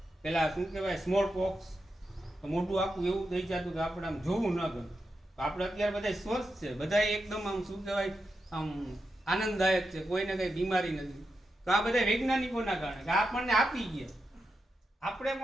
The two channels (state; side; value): normal; both; correlation 0.87